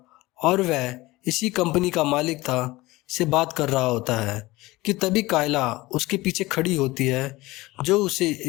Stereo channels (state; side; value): quieter; right; 20.0 dB